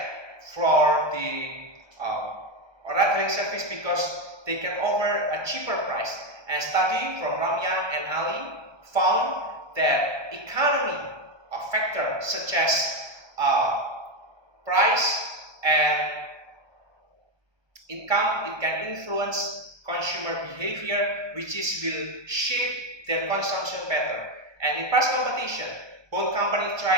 for the ride-hailing service, because they can offer a cheaper price. And study from Ramya and Ali found that economy factor such as price and income, it can influence consumer behavior, which will shape their consumption pattern. And in price competition, both companies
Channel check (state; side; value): late; left; 1.2 ms